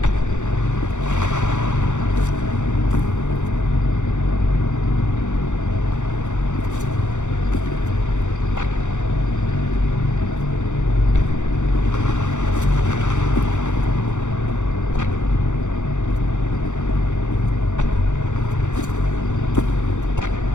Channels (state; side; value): late; right; 0.85 ms